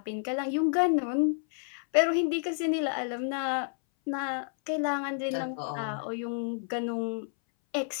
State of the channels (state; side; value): silent; right; 58 dB below the other